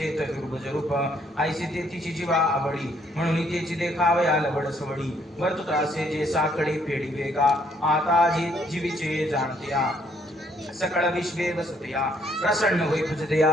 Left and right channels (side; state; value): both; normal; correlation 0.68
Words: चतुर्भुज रूप. ऐसे ते तिची जीवा आवडी, म्हणून तेची देखावया लवड सवडी. वर्तुत असे जे साकडे फेडी वेगा, आता जी जीवीचे जाणत्या. सकळ विश्वे वसतया, प्रसन्न होई तुझदया